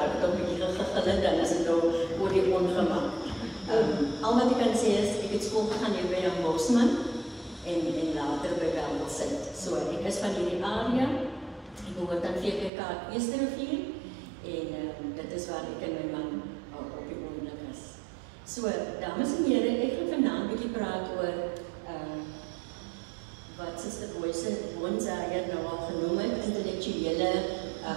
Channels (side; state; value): left; drops out; at 12.7 s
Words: dan ben ik gegillen, dan is het nou voor die ongemak. Al wat ik kan zeggen is, ik heb school gegaan hier bij Jan Bosman en later bij Welmelsint. So, ik is van die area, ik behoort aan VKK Eerste Rivier en dat is waar ik en mijn man op die ogenblik is. So, dames en heren, ek gaan vanavond 'n bietjie praat oor wat Sister Boonsa hier nou al genoem het, intellektuele